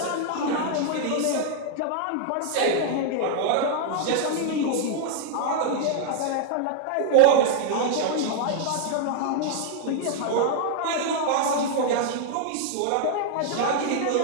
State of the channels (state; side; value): different; both; correlation 0.00